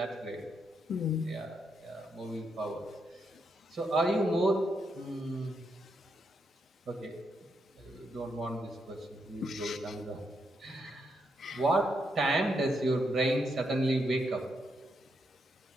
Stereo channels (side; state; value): both; normal; correlation 0.80